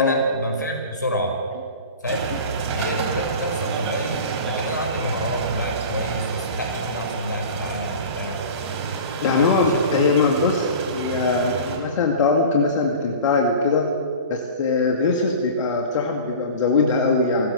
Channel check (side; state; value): both; inverted; correlation -0.36